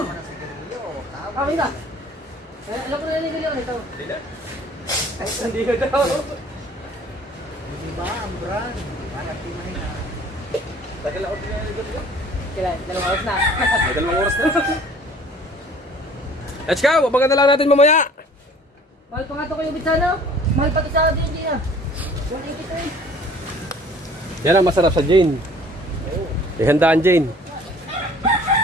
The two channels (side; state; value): both; normal; correlation 0.51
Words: na sigarilyo. Okay ka? Alam ko na nilili ko nito. Hindi na. Hindi ko daw. Hindi ba ang brand? Hanap di man na. Tagal ako din na. Kailan? 2 oras na. May 2 oras na. Let's go! Abangan na lang natin mamaya. Mahal pa nga ito kayo bitsano. Mahal pa ito sa atin, hindi na. 180 to eh. Yan ang masarap sa Jane. Ihandaan Jane.